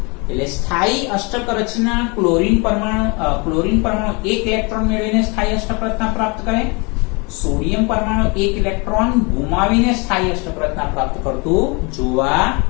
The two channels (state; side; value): quieter; right; 29.6 dB